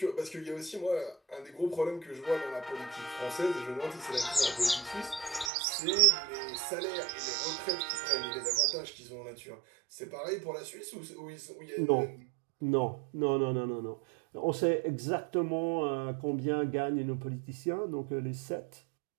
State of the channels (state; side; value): drops out; left; at 5.5 s